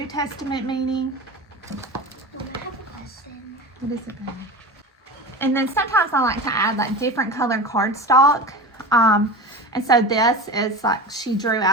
Testament meaning. I have a question. What is it, babe? And then sometimes I like to add like different colored cardstock. And so this is like she drew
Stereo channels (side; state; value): both; normal; correlation 0.29